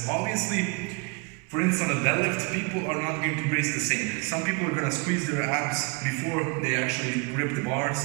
Obviously. For instance, on a deadlift, people are not going to brace the same. Some people are going to squeeze their abs before they actually grip the bar.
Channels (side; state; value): left; quieter; 31.7 dB